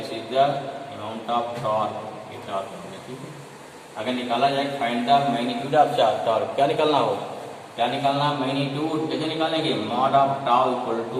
is the amount of torque, ये टॉर्क हो गया, ठीक है। अगर निकाला जाए find the magnitude of torque, क्या निकालना हो, क्या निकालना, मैग्नीट्यूड कैसे निकालेंगे, mod of tau equal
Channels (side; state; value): both; identical; correlation 1.00